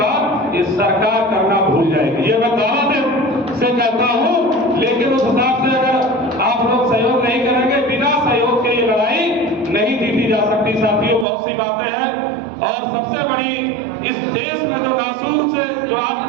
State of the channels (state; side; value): drops out; left; at 11.2 s